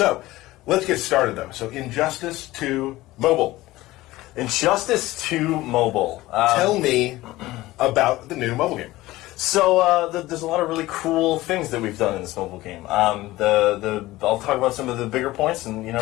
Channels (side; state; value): right; quieter; 17.9 dB